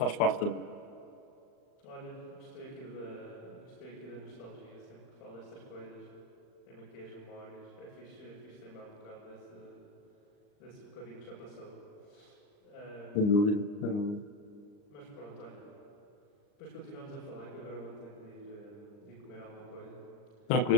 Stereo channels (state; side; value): late; right; 39 ms